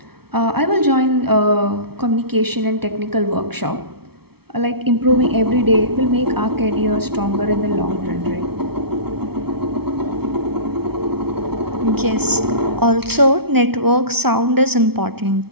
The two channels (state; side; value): late; left; 0.96 ms